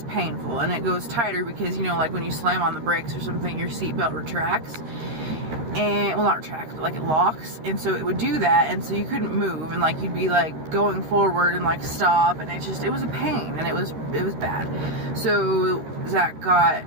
painful, and it goes tighter because, you know, like when you slam on the brakes or something, your seatbelt retracts, and, well, not retracts, but like it locks, and so it would do that, and so you couldn't move, and like you'd be like going forward and like stop, and it was a pain, and it was bad. So Zach got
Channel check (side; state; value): left; late; 13 ms